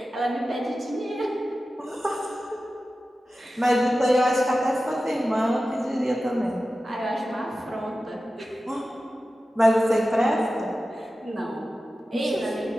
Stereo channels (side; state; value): both; normal; correlation 0.94